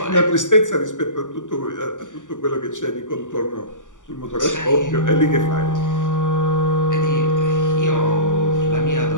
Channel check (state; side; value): late; right; 0.87 ms